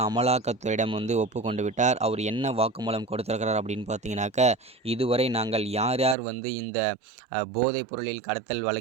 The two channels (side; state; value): left; drops out; at 6.2 s